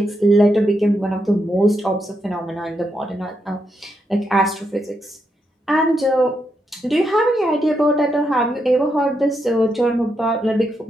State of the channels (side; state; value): both; normal; correlation 0.82